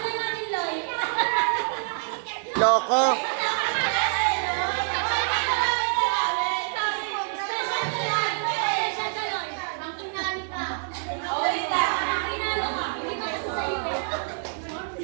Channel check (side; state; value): left; silent; 61 dB below the other